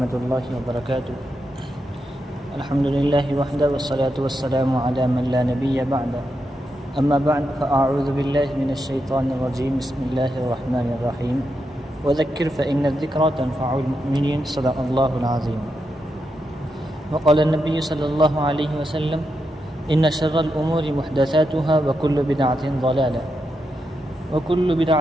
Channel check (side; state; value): both; normal; correlation 0.85